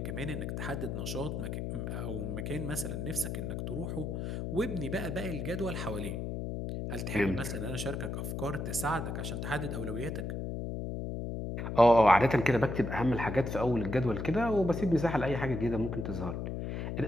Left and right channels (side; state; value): left; noise; hum, 4 dB below the sound